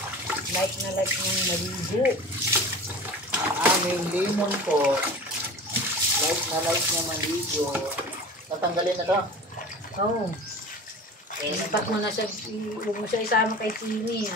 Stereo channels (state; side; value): normal; both; correlation 0.36